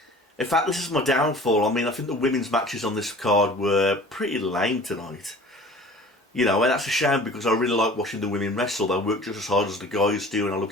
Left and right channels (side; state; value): both; normal; correlation 0.44